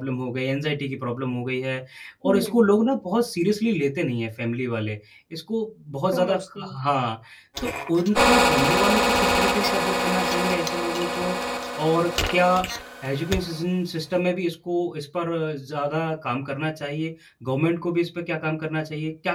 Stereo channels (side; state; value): both; identical; correlation 1.00